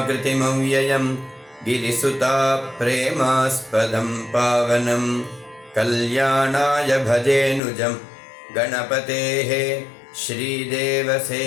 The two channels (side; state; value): right; drops out; at 7.6 s